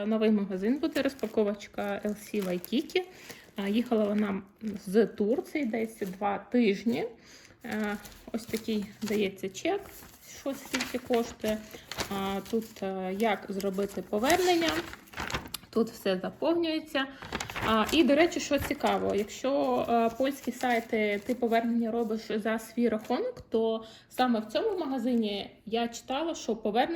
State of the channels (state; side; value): identical; both; correlation 1.00